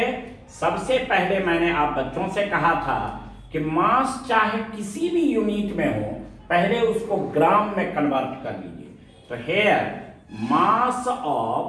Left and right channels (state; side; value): identical; both; correlation 1.00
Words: सबसे पहले मैंने आप बच्चों से कहा था कि मास चाहे किसी भी यूनिट में हो, पहले उसको ग्राम में कन्वर्ट कर लीजिए। तो here mass